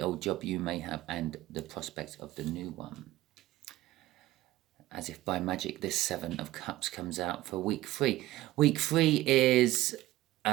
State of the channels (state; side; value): quieter; left; 16.3 dB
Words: job you may have and the prospects of the new one. As if by magic, this 7 of Cups comes out for week 3. Week 3 is